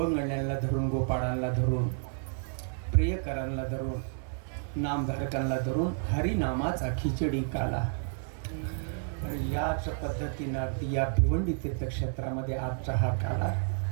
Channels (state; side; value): silent; left; 57 dB below the other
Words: धरून गोपाळांना धरून प्रियकरांना धरून नामधारकांना धरून हरिनामाचा खिचडी काला याच पद्धतीनं अगदी या भिवंडी तीर्थक्षेत्रामध्ये आजचा हा काला